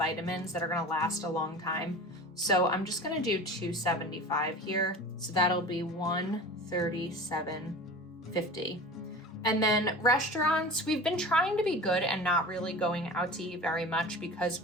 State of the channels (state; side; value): normal; both; correlation 0.35